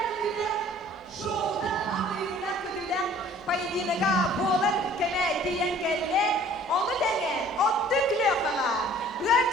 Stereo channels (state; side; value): normal; both; correlation 0.52